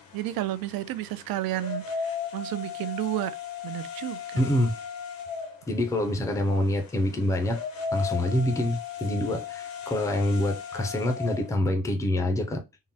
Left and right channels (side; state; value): both; normal; correlation 0.63